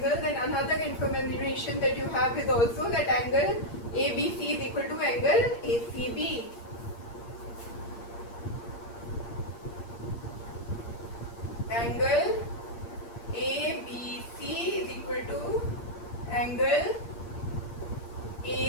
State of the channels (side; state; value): right; late; 8.6 ms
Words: Then another information that you have is also that angle ABC is equal to angle ACB. Angle ABC is equal to angle